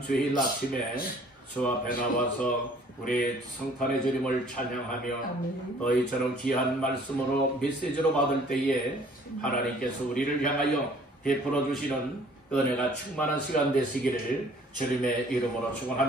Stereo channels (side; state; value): both; normal; correlation 0.55